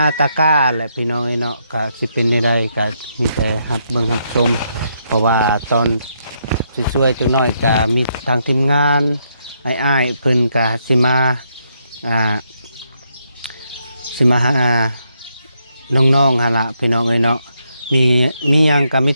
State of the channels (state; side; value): inverted; both; correlation -0.77